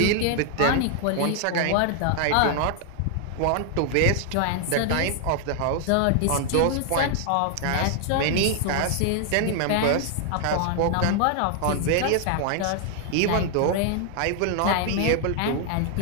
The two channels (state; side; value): different; both; correlation 0.00